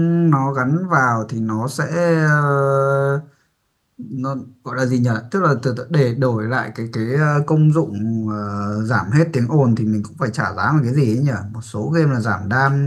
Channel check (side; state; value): both; identical; correlation 1.00